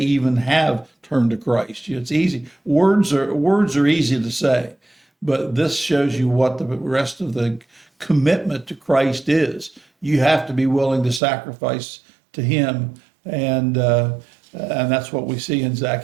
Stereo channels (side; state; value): left; drops out; at 11.2 s